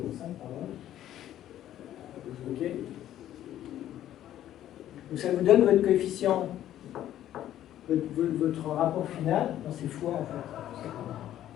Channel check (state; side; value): quieter; right; 12.2 dB